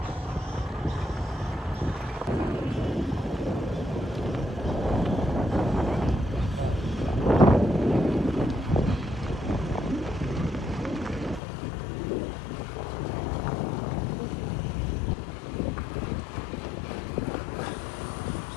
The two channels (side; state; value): right; drops out; at 11.4 s